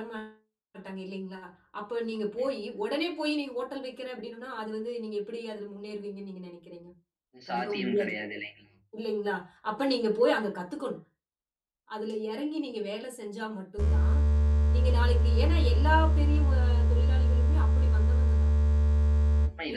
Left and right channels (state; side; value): identical; both; correlation 1.00